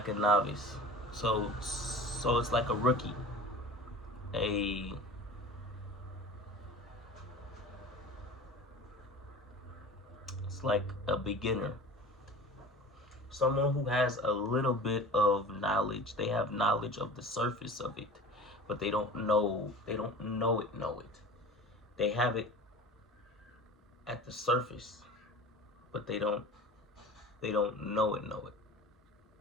a novice. So it's like a rookie, a it's like a beginner, someone who has a little bit of knowledge. They have knowledge of the surface of it, but they don't know. They don't know it. Know it. They have it at the surface, but they don't. They don't know it. Know it.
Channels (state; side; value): normal; both; correlation 0.38